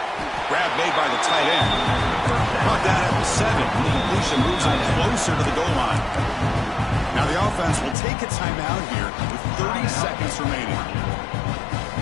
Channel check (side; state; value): right; drops out; at 8.0 s